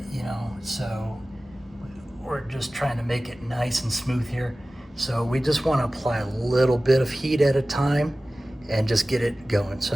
So we're just trying to make it nice and smooth here. So we just want to apply a little bit of heat at a time and just get it going.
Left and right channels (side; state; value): both; normal; correlation 0.97